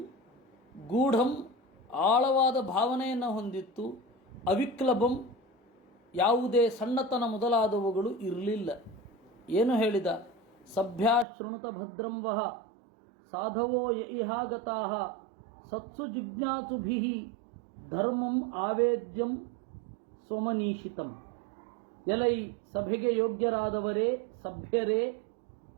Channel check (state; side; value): drops out; left; at 11.2 s